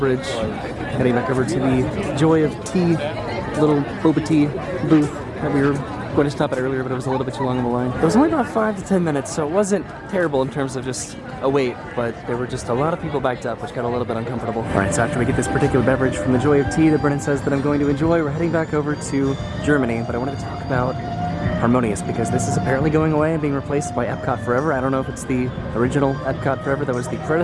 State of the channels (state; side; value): identical; both; correlation 1.00